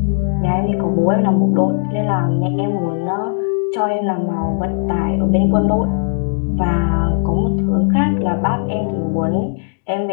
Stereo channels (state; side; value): silent; right; digital silence